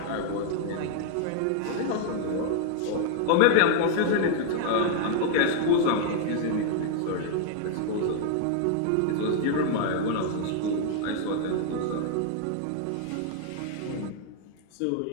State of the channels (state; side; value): different; both; correlation 0.00